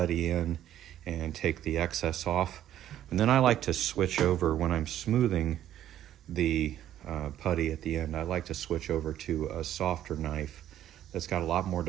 in and take the excess off. And then I like to switch over when I'm smoothing the putty at the end. I like to switch over to a softer knife that's got a lot more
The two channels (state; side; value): quieter; left; 11.7 dB